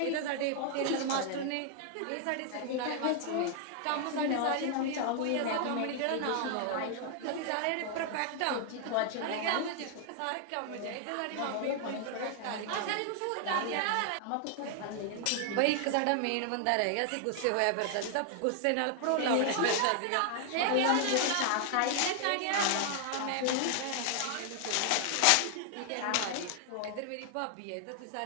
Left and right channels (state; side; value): different; both; correlation 0.00